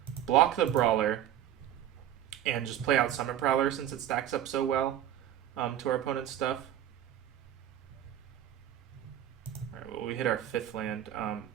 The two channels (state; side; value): quieter; left; 11.3 dB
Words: block the Brawler and just play out Summit Prowler since it stacks up so well to our opponent's stuff. Alright, well, we hit our 5th land.